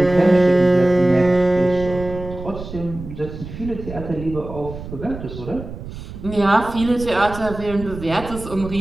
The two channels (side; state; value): right; noise; rumble, 11 dB below the sound